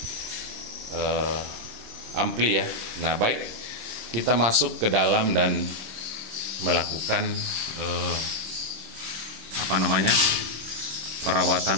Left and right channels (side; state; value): left; late; 26 ms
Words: ampli ya. Nah, baik, kita masuk ke dalam dan melakukan